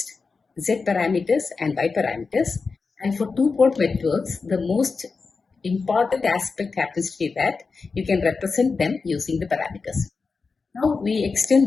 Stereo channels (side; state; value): right; quieter; 4.6 dB